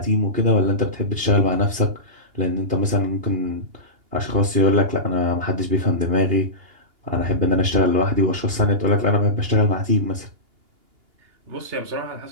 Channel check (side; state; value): left; late; 2.8 ms